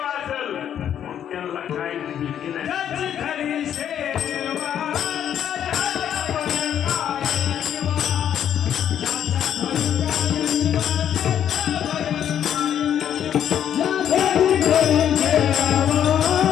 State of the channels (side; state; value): right; quieter; 9.7 dB